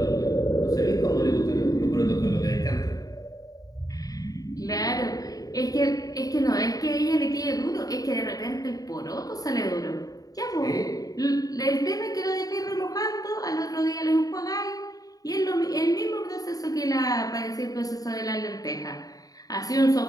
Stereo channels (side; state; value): right; late; 0.18 ms